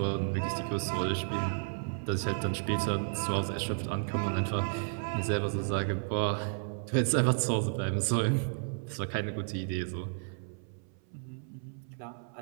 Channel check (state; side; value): silent; left; 56 dB below the other